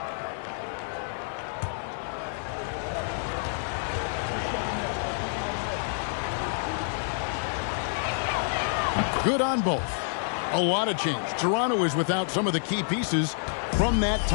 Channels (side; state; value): right; silent; digital silence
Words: Good on both. A lot of change. Toronto is without some of the key pieces from that